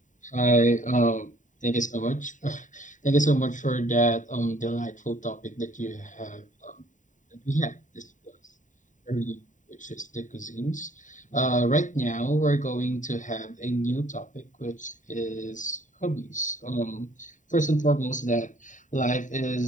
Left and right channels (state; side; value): late; right; 0.36 ms